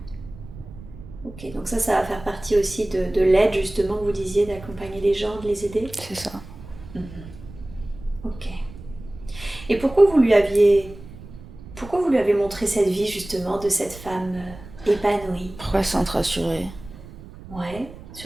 Ok, donc ça va faire partie aussi de l'aide, justement, que vous disiez, d'accompagner les gens, de les aider. C'est ça. Ok. Et pourquoi vous lui avez montré cette vie, justement, de cette femme épanouie? Pourquoi se sentir rassurée? Ouais.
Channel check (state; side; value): noise; right; rumble, 16 dB below the sound